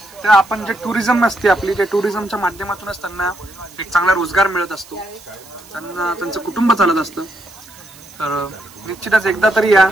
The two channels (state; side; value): noise; right; hiss, 22 dB below the sound